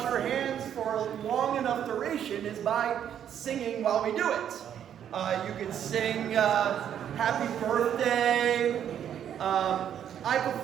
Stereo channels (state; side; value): quieter; left; 9.5 dB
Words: our hands for a long enough duration is by singing while we do it. You could sing Happy Birthday. I